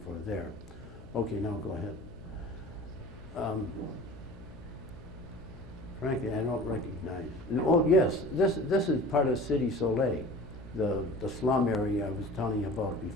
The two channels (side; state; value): left; noise; hum, 19 dB below the sound